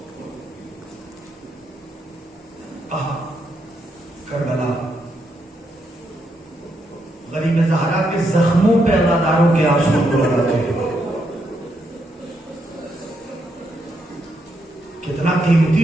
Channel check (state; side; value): normal; both; correlation 0.79